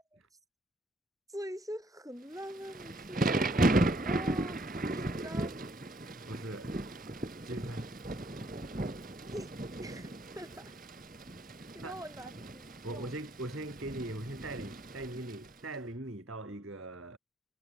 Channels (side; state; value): both; normal; correlation 0.68